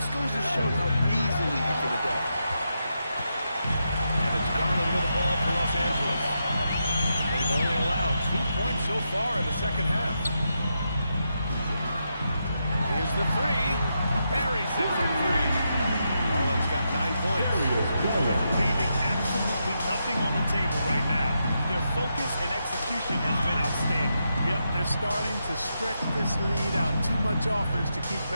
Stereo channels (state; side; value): inverted; both; correlation -0.84